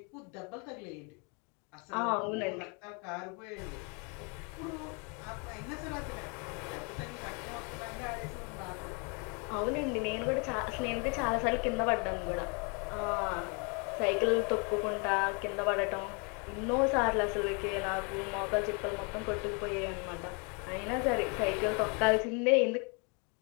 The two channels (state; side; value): quieter; right; 34.0 dB